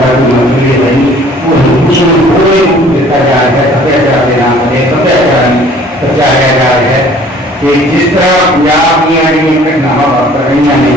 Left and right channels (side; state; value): both; normal; correlation 0.53